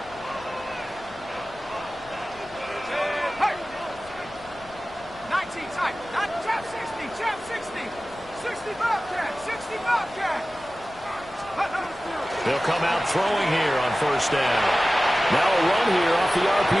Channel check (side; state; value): left; noise; rumble, 23 dB below the sound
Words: Hey! 19 type, not Chap 60, Chap 60. 60 Bobcat, 60 Bobcat. They'll come out throwing here on 1st down. Now a run here off the